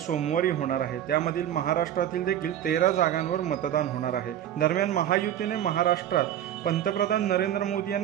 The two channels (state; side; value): quieter; left; 11.0 dB